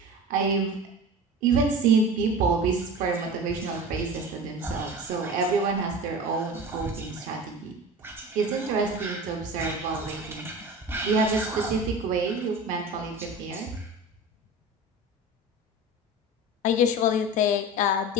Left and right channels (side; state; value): both; normal; correlation 0.34